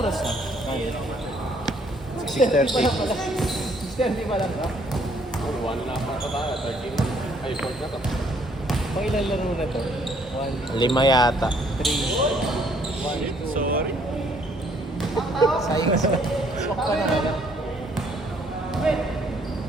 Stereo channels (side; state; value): both; normal; correlation 0.65